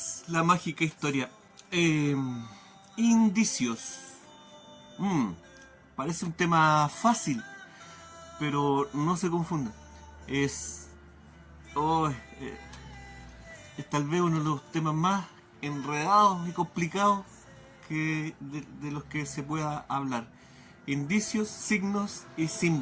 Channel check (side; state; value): both; identical; correlation 1.00